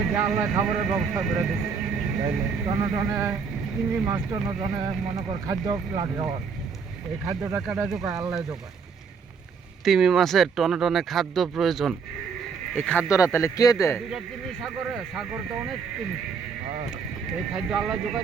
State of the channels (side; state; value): left; quieter; 5.8 dB